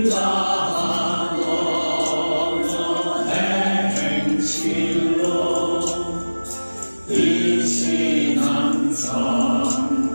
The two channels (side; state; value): both; inverted; correlation -1.00